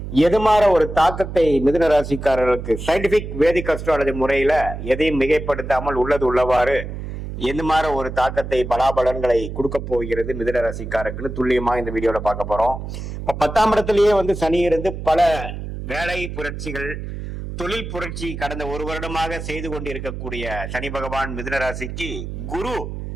எதுமாற ஒரு தாக்கத்தை மிதுன ராசிக்காரர்களுக்கு சயின்டிபிக் வேதிக் அஸ்ட்ராலஜி முறையில எதையும் மிகைப்படுத்தாமல் உள்ளது உள்ளவாறு எந்த மாதிரி ஒரு தாக்கத்தை பலாபலன்களை கொடுக்க போகிறது மிதுன ராசிக்காரருக்கு துல்லியமா இந்த வீடியோல பார்க்க போறோம். இப்ப 10ஆம் இடத்திலேயே சனி இருந்து பல வேலை புரட்சிகள், தொழில் புரட்சி கடந்த ஒரு வருடமாக செய்து கொண்டு இருக்கக்கூடிய சனி பகவான் மிதுன ராசிக்கு குரு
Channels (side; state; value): right; noise; hum, 8 dB below the sound